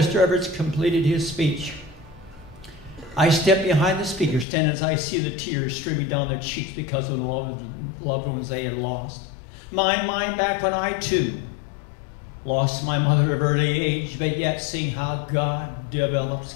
Evart completed his speech, I step behind the speaker stand as I see the tears streaming down their cheeks because of the loved ones they had lost. Mine back when I, too, lost my mother at an early age, but yet seeing how God develops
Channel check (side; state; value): right; drops out; at 4.5 s